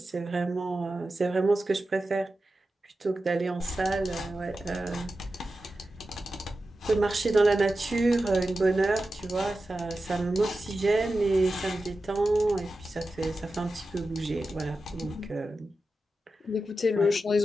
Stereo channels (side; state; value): both; normal; correlation 0.92